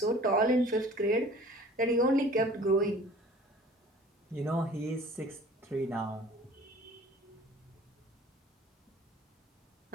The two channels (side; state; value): both; normal; correlation 0.48